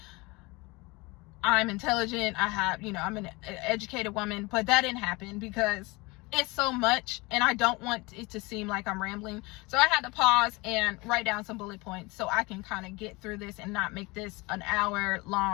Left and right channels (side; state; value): right; quieter; 24.5 dB